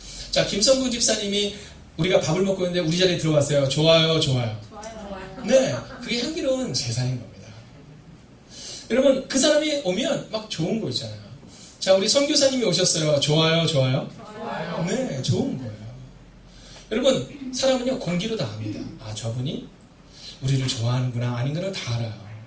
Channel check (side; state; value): both; identical; correlation 1.00